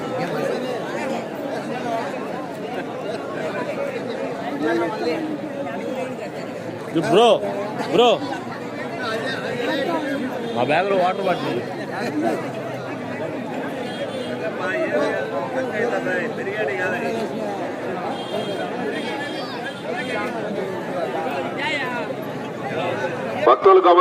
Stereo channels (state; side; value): identical; both; correlation 1.00